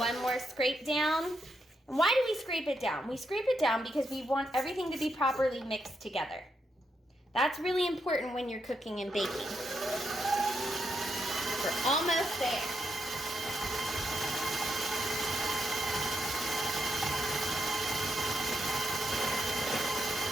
one more scrape down. And why do we scrape it down? We scrape it down because we want everything to be properly mixed together. That's really important when you're cooking and baking. We're almost there.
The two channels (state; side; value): normal; both; correlation 0.81